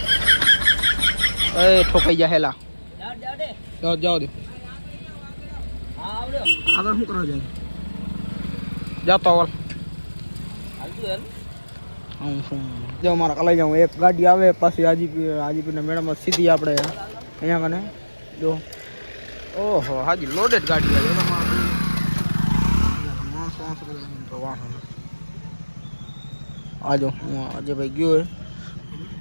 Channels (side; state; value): both; inverted; correlation -1.00